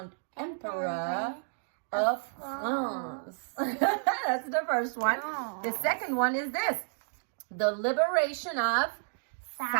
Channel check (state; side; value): silent; left; digital silence